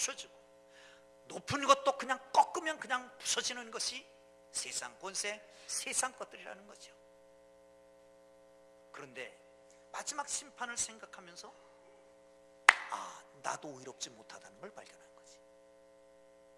높은 것도 그냥 꺾으면 그냥 부서지는 것이 세상 권세, 세상 것들이라는 거죠. 그런데 마지막 심판을 생각하면서 나도 의롭지 못하다는 걸 발견한 거지.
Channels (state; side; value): identical; both; correlation 1.00